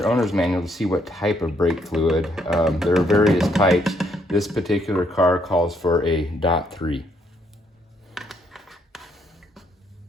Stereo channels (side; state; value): both; normal; correlation 0.71